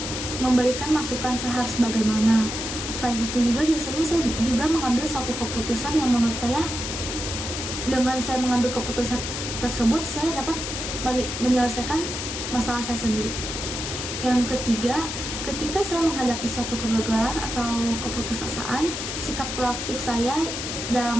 memberikan masukan saya harus bagaimana. Selain itu juga biasanya saya juga mengambil suatu keputusan yang menurut saya, dengan saya mengambil keputusan tersebut saya dapat menyelesaikan masalah saya sendiri. Yang ketiga, ketika saya menghadapi suatu kegagalan atau keputusasaan, sikap proaktif saya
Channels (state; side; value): noise; left; hiss, 5 dB below the sound